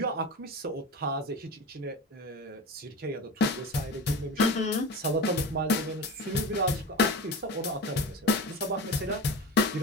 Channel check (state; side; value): normal; both; correlation 0.28